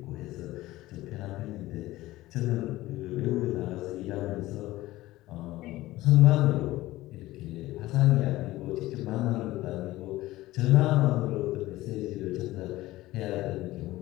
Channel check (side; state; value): right; quieter; 17.3 dB